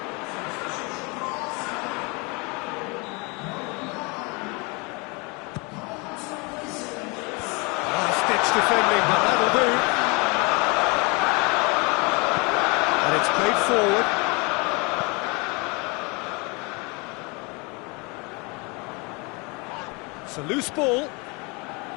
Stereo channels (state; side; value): quieter; right; 29.2 dB